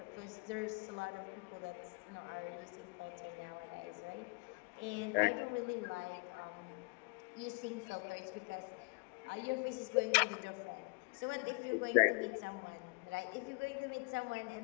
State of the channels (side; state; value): right; quieter; 31.6 dB